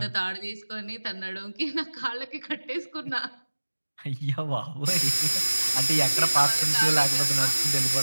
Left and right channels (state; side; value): inverted; both; correlation -1.00